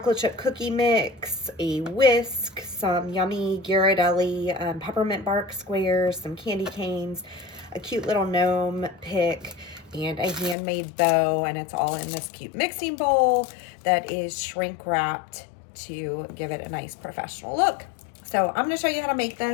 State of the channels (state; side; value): drops out; right; at 10.6 s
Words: chip cookie mix, a whisk, some yummy Ghirardelli peppermint bark squares, some candy canes, a cute little gnome pick, and a handmade bow, and it's all in this cute mixing bowl that is shrink wrapped to give it a nice professional look. So I'm going to show you how to make